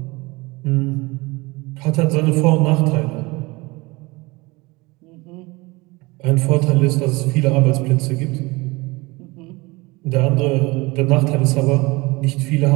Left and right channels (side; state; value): left; quieter; 23.6 dB